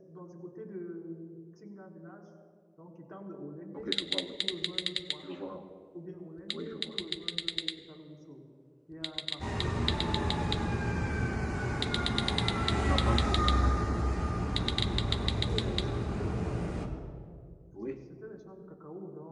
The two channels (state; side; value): identical; both; correlation 1.00